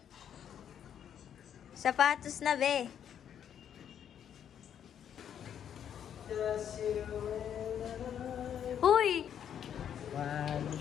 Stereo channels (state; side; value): quieter; right; 9.1 dB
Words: Sapatos na, be. Uy! One